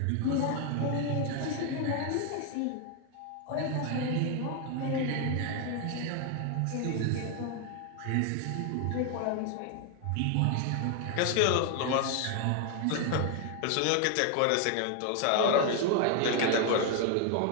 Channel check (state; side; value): different; both; correlation 0.01